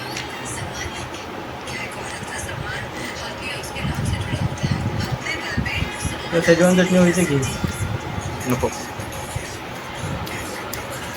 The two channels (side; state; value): both; identical; correlation 1.00